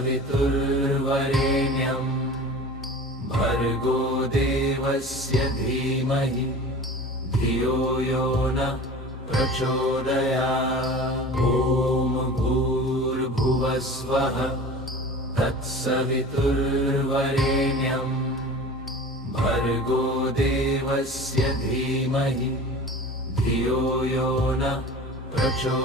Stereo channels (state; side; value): normal; both; correlation 0.38